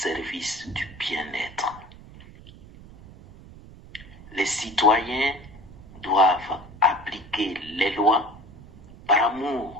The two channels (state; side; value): noise; right; rumble, 19 dB below the sound